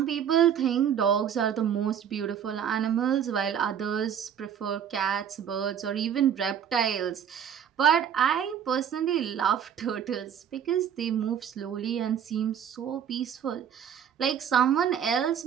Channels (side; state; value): left; quieter; 8.6 dB